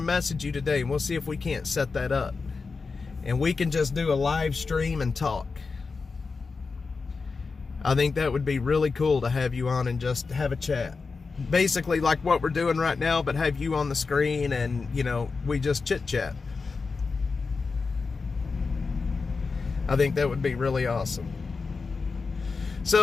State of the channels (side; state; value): right; quieter; 4.5 dB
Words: message you today, and we'll see if we can't set that up. And we can just do a live stream and talk. I think that would be really cool to have you on and just have a chat. Basically like what we're doing right now, but have you on the screen and, we just chit-chat. I think that would be really awesome.